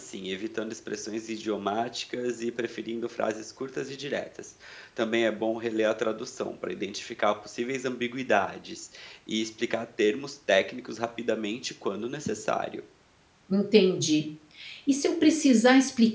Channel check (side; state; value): both; identical; correlation 1.00